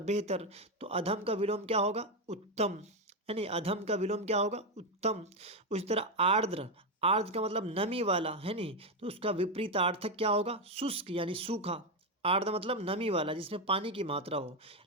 बेहतर, तो अधम का विलोम क्या होगा? उत्तम। यानी अधम का विलोम क्या होगा? उत्तम। उसी तरह आर्द्र। आर्द्र का मतलब नमी वाला, है नहीं, तो उसका विपरीतार्थक क्या होगा? शुष्क, यानी सूखा। आर्द्र मतलब नमी वाला जिसमें पानी की मात्रा हो,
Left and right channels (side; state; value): both; normal; correlation 0.08